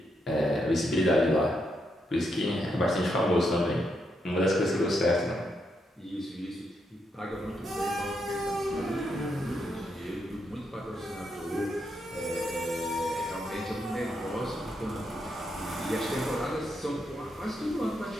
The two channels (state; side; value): normal; both; correlation 0.80